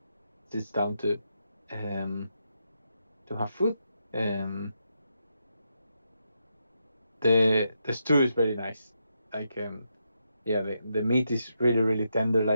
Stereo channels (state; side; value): inverted; both; correlation -0.83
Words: sits down um to have food. Um, the stew is very nice. Like yeah, the meat is really tender.